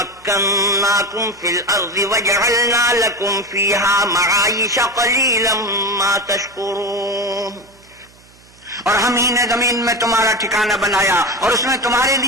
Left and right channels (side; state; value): right; noise; hum, 28 dB below the sound